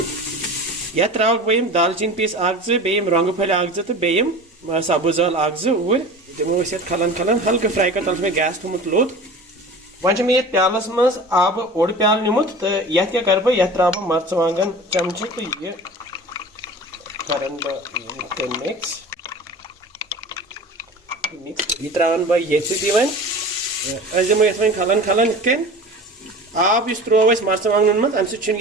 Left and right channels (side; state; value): both; normal; correlation 0.37